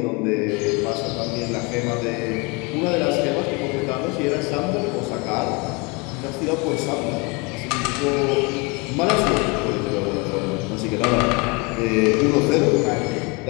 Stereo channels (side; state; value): right; quieter; 28.8 dB